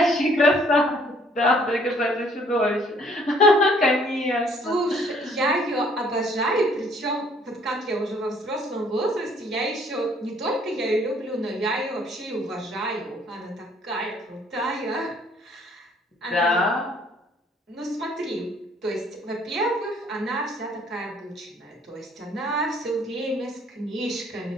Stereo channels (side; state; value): both; normal; correlation 0.61